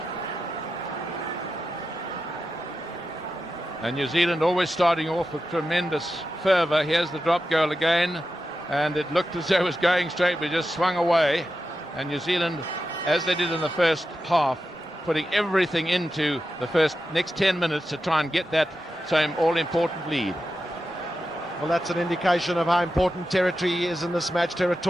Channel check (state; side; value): normal; both; correlation 0.90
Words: And New Zealand always starting off with tremendous fervour. Here's the drop goal again, and it looked as though it was going straight, but just swung away. And New Zealand, as they did in the first half, putting everything into the next 10 minutes to try and get that same all-important lead. Well, that's an indication of how important territory is in this match.